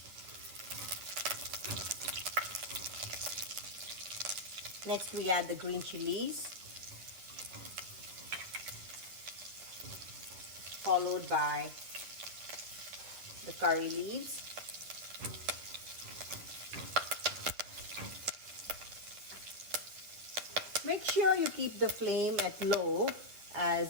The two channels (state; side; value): late; left; 10 ms